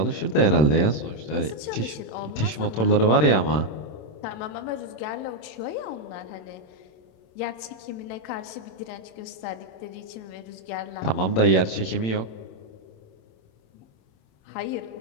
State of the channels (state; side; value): late; right; 27 ms